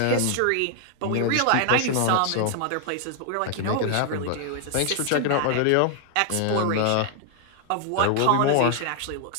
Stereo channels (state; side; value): different; both; correlation 0.00